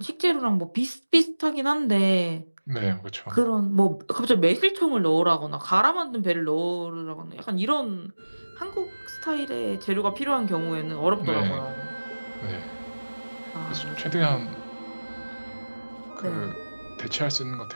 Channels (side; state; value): both; inverted; correlation -1.00